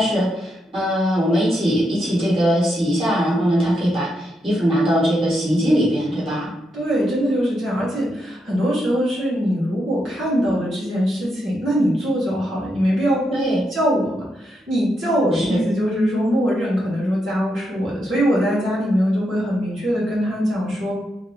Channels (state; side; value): normal; both; correlation 0.82